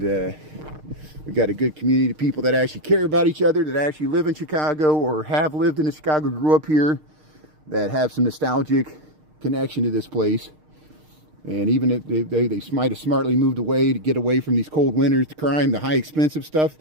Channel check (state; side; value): late; left; 6.5 ms